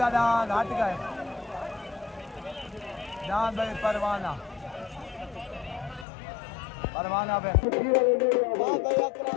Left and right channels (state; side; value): drops out; right; at 6.1 s